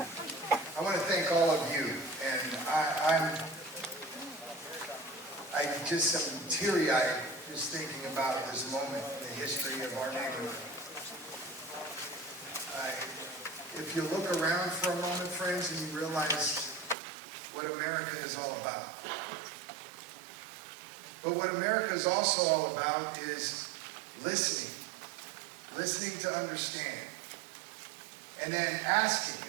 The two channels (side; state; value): left; drops out; at 16.9 s